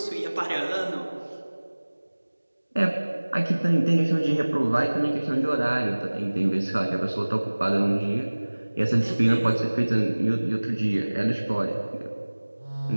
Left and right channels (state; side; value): inverted; both; correlation -1.00